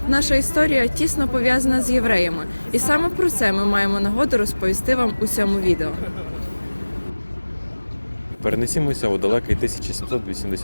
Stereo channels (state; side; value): inverted; both; correlation -1.00